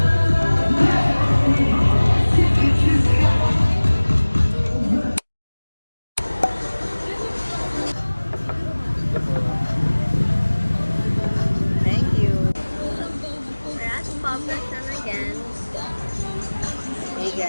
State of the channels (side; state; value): both; inverted; correlation -1.00